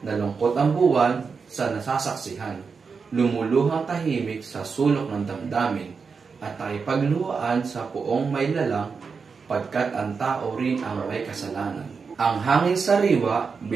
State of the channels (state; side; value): quieter; left; 5.3 dB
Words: Nalungkot ang buwan sa nasasaksihan. Lumuluhang tahimik sa sulok ng damdamin. At nakipagluhaan sa puong may lalang, pagkat ang tao rin ang may kasalanan. Ang hangin sariwa,